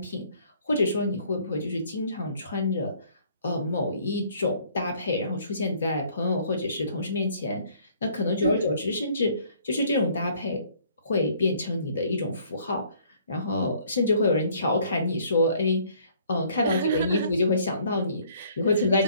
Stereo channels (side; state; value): both; inverted; correlation -0.60